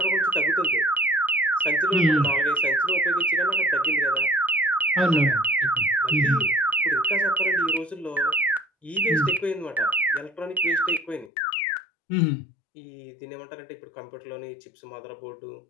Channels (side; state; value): right; drops out; at 11.3 s